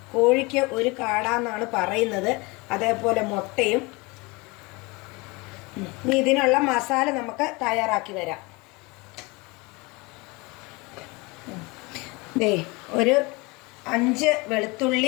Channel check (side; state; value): right; quieter; 25.8 dB